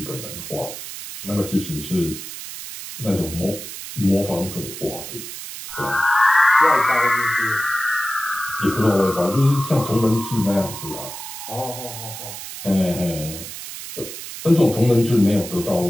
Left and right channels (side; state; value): right; noise; hiss, 10 dB below the sound